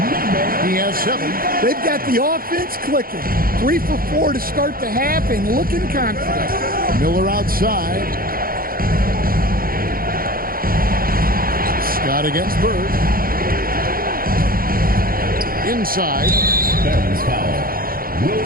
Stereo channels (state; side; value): late; left; 0.42 ms